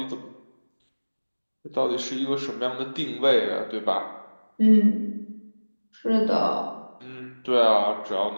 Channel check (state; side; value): inverted; both; correlation -1.00